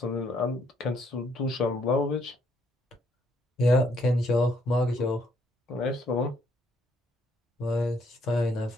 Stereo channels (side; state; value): both; normal; correlation 0.70